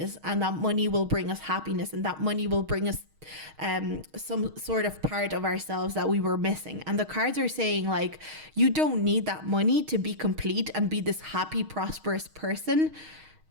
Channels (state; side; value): late; left; 6.4 ms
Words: and that money will bring us happiness, and that money will bring us some sort of part of ourselves that we were missing. And the cards are saying, like, you don't need that money to be complete and be this happy, prosperous person.